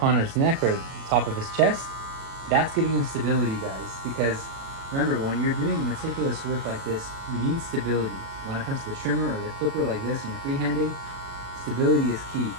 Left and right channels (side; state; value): left; late; 36 ms